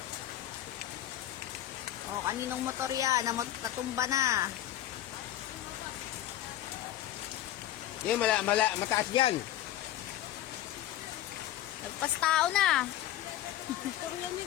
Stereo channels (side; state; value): right; quieter; 13.0 dB